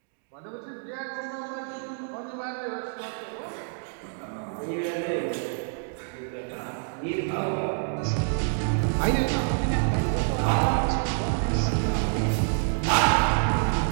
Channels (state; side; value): silent; left; digital silence